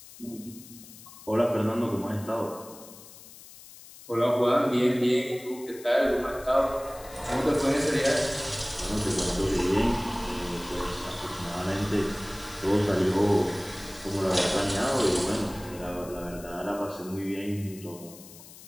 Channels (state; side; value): noise; left; hiss, 18 dB below the sound